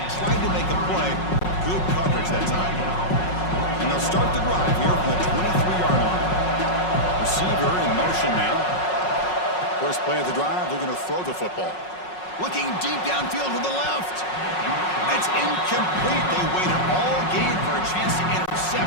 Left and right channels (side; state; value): right; late; 5.5 ms